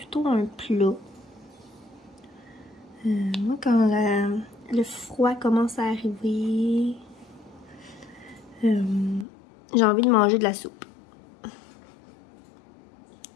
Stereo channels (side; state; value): right; drops out; at 9.2 s